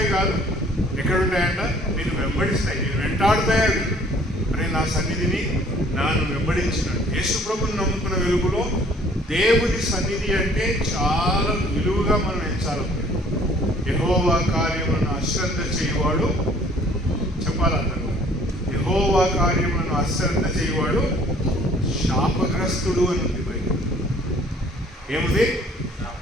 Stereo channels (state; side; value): normal; both; correlation 0.56